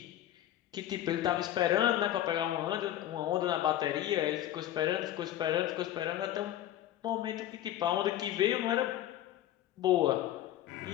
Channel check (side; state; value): right; quieter; 12.7 dB